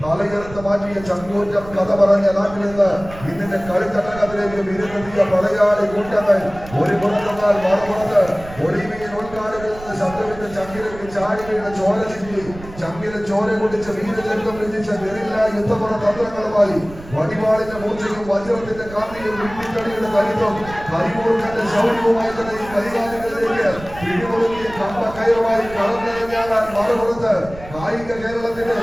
തലയെടുത്ത് മാറ്റിയ ചങ്കൂറ്റം കഥ പറഞ്ഞ നാട്ടിൽ നിന്ന് ഇതിന്റെ കളിത്തട്ടകത്തിലേക്ക് വിരുന്നെത്തിയ പടയാളി കൂട്ടങ്ങൾ ഒരു പുറത്തെന്നാൽ മറുപുറത്ത് ഒളിവിയിൽ ഉൾക്കാടുകളിൽ നിന്ന് ശത്രുവിന്റെ ചങ്കിലേക്ക് ചാടി വീണ ചോര ചിന്തി ചങ്കിലെ ചോര കുടിച്ച് വീരചരിതം രചിച്ച ഗറില്ല യുദ്ധപുറ തന്ത്രങ്ങളുമായി വടിവാളിന്റെ മൂർച്ചയും വജ്രത്തിന്റെ കാന്തിയും വിട്ടിക്കടിയുടെ കരുത്തും കരിമൂർഖന്റെ ശൗര്യവുമായി തന്നെ ഈ കൈകാലികളിലേക്ക് പിടിമുറുക്കിയ കമ്പക്കയറുമായി കടന്നിറങ്ങാൻ മറുപുറത്ത് കായിക കേരളത്തിന്റെ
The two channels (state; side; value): noise; right; rumble, 16 dB below the sound